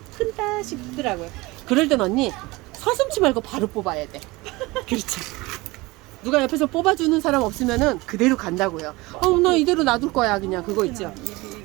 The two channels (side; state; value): left; quieter; 22.1 dB